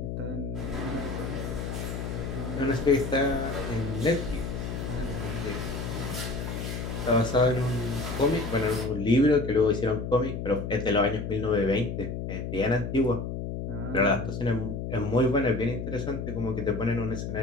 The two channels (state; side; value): noise; left; hum, 4 dB below the sound